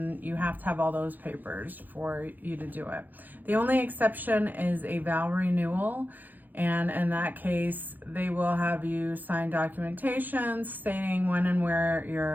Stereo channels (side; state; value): left; late; 0.085 ms